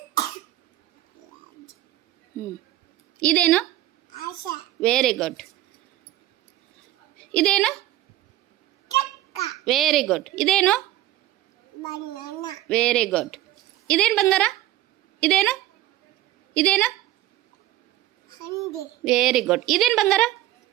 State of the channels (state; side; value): quieter; left; 14.2 dB